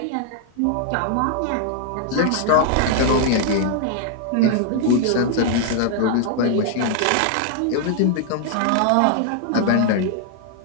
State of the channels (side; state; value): both; different; correlation 0.00